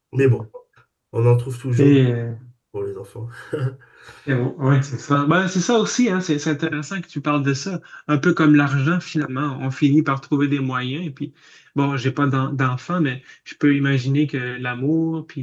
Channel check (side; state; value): both; identical; correlation 1.00